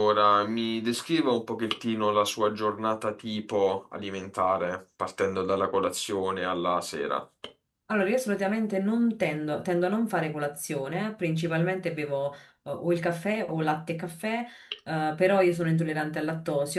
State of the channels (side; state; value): both; identical; correlation 1.00